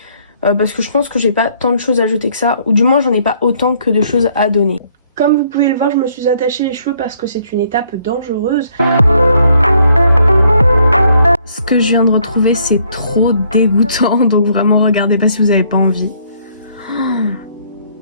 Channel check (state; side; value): inverted; both; correlation -0.66